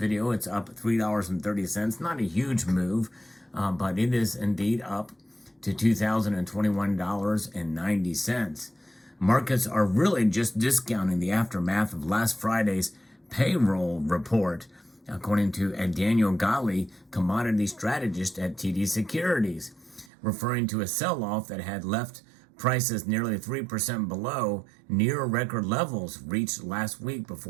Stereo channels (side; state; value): left; drops out; at 20.1 s